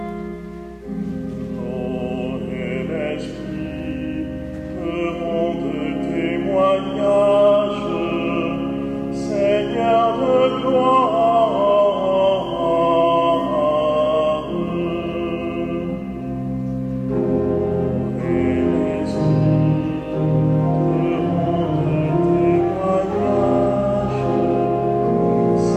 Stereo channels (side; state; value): both; identical; correlation 1.00